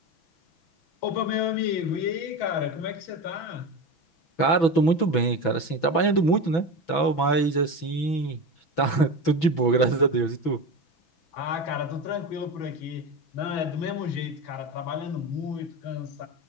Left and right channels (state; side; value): late; right; 6.1 ms